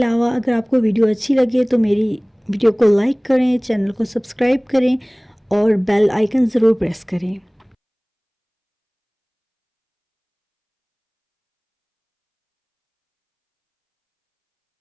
अगर आपको वीडियो अच्छी लगे तो मेरी वीडियो को लाइक करें, चैनल को सब्सक्राइब करें और बेल आइकन ज़रूर प्रेस करें।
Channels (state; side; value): identical; both; correlation 1.00